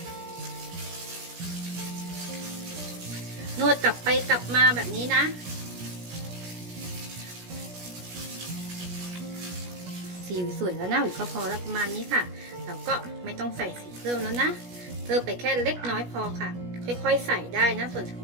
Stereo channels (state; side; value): late; left; 17 ms